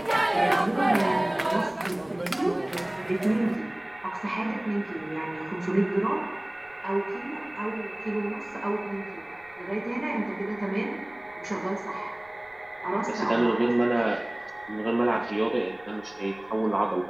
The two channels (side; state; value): right; noise; rumble, 29 dB below the sound